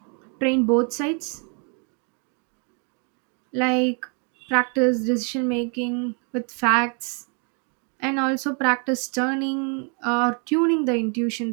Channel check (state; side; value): quieter; left; 38.1 dB